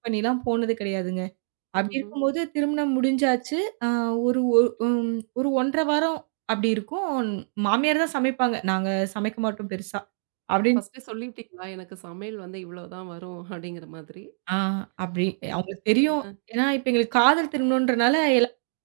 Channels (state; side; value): silent; left; digital silence